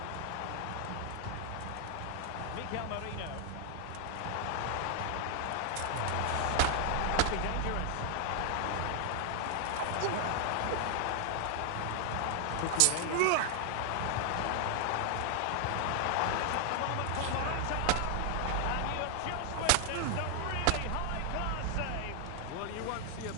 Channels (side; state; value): both; different; correlation 0.00